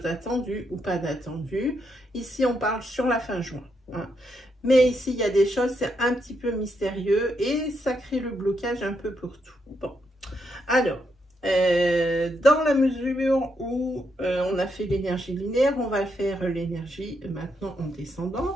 d'attendu ou pas d'attendu. Ici, on parle sur la fin juin. Hein. Mais ici, il y a des choses, c'est un petit peu mystérieux et ça crée le blocage un peu pour tout. Bon, alors, dans la mesure où on a fait l'énergie linéaire, on va faire l'énergie maintenant en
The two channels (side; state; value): both; normal; correlation 0.79